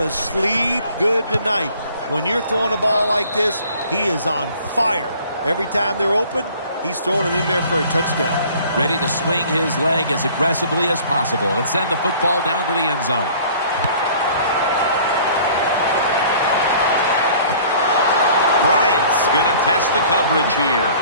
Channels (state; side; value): inverted; both; correlation -0.51